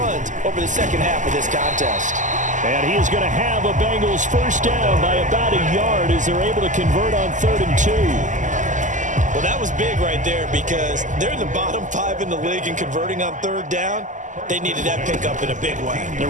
over the second half of this contest. And he is going to have a Bengals first down by about a yard as they're able to convert on 3rd and 2. Well, that was big right there because they're in the bottom 5 in the league and converting on 3rd down. They needed that pickup in a big way. There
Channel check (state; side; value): late; left; 0.37 ms